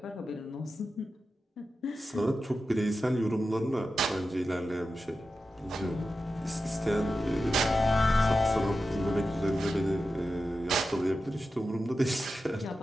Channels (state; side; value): normal; both; correlation 0.92